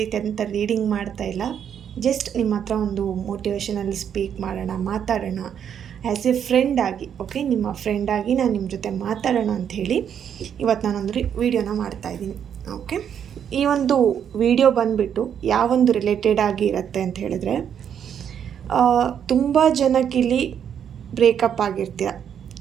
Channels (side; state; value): left; quieter; 8.6 dB